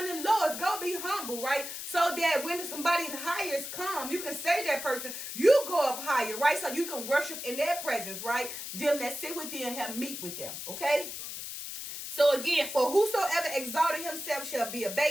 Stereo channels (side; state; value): left; noise; hiss, 7 dB below the sound